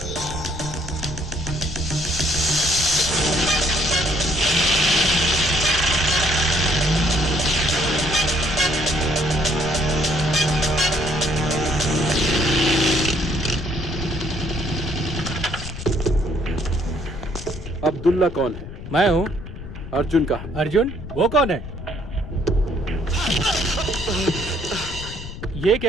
अब्दुल्ला कौन है? मैं हूँ। अर्जुन का? अर्जुन? वो कौन है? ये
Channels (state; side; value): noise; left; rumble, 11 dB below the sound